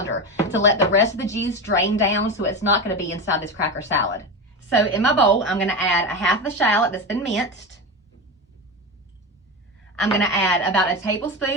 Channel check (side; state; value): both; normal; correlation 0.20